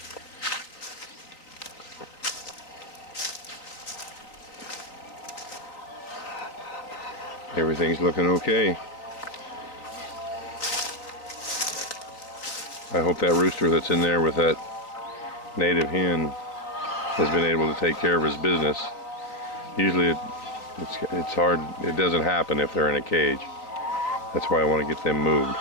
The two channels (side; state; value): right; late; 3.7 ms